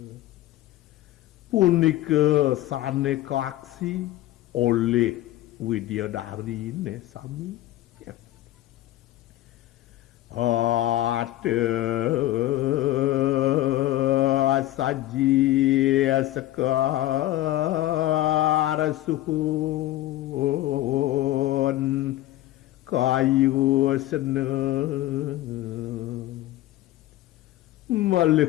punika sane kaksi oleh Widyadari ne sami ada saji sekar suhun kayu seneng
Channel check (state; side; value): quieter; right; 15.1 dB